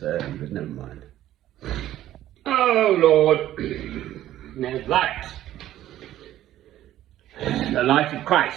early, but never mind. Oh Lord, there's light. The light of Christ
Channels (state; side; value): quieter; left; 13.3 dB